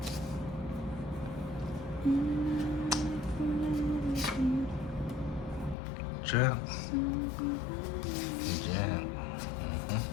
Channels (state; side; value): drops out; right; at 5.8 s